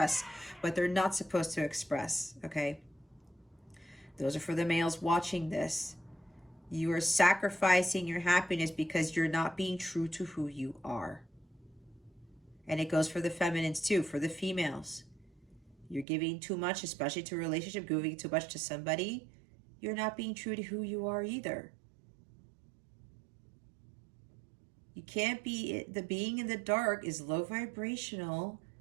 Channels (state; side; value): drops out; left; at 16.1 s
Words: what they're not supposed to express, okay? Those are for the males watching this. You are sacrificing your happiness because you're not being true to who you are. And it goes for the feminines too, for the females. You're giving too much, especially to a relationship, giving too much to somebody. You're not being true to who you are either. You can't be, the being in the dark is low vibrational.